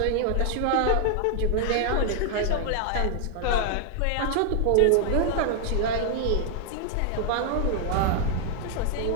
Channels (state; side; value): different; both; correlation 0.00